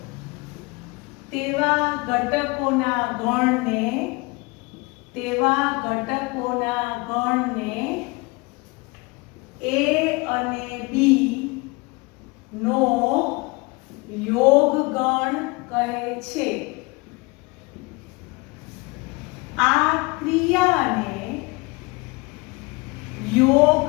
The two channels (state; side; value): quieter; right; 26.2 dB